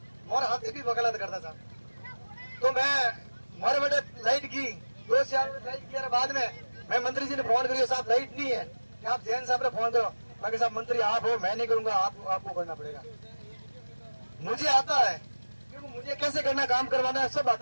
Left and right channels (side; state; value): both; inverted; correlation -1.00